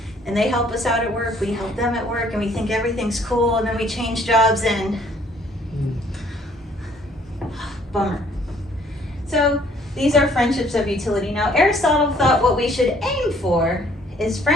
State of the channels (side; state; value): both; normal; correlation 0.61